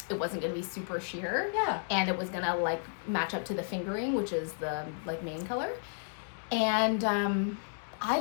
it wasn't going to be super sheer. Yeah. And it was going to like match up to the fingering, which is the like main color. And I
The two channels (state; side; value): silent; right; digital silence